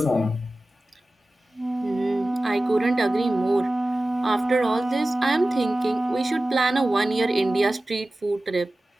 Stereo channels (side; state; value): both; normal; correlation 0.96